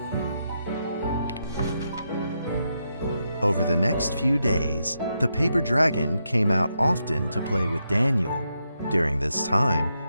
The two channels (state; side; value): inverted; both; correlation -0.83